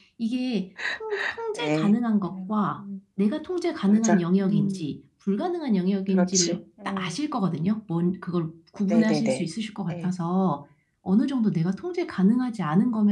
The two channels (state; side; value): identical; both; correlation 1.00